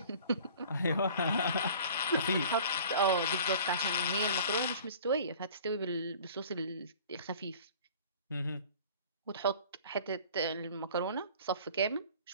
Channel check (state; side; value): inverted; both; correlation -0.47